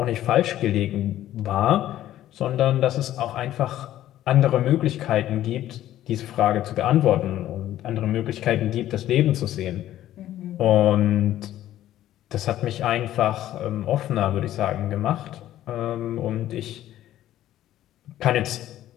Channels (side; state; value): right; quieter; 13.1 dB